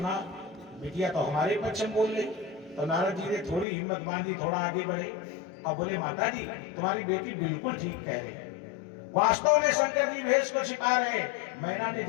बिटिया तो हमारे पक्ष में बोल रही। तो नारद जी ने थोड़ी हिम्मत बांधी, थोड़ा आगे बढ़े और बोले माता जी तुम्हारी बेटी बिल्कुल ठीक कह रही है। वास्तव में शंकर जी भेष को छिपा रहे। मैना ने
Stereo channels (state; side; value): drops out; right; at 3.7 s